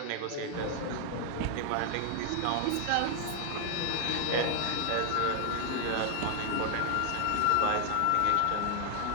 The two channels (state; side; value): different; both; correlation 0.00